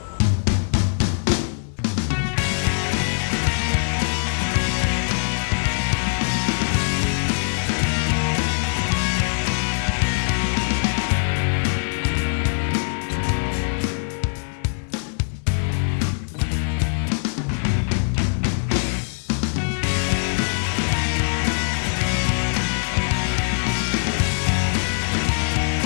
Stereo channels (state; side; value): silent; right; 64 dB below the other